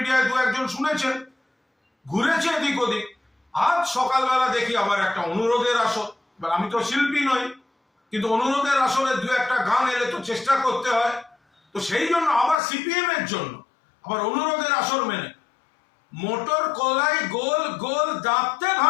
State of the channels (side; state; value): right; drops out; at 12.6 s